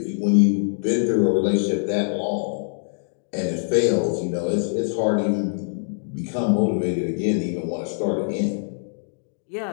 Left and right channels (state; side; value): silent; right; digital silence